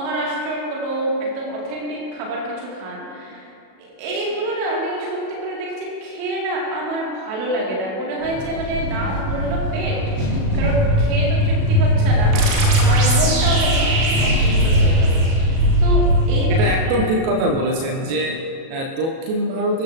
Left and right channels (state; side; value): late; left; 37 ms